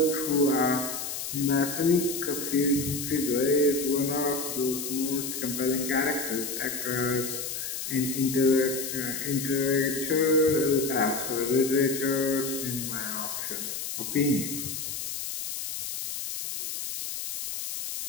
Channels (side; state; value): left; noise; hiss, 5 dB below the sound